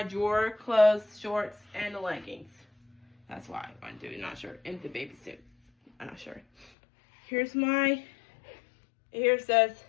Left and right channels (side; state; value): right; drops out; at 6.7 s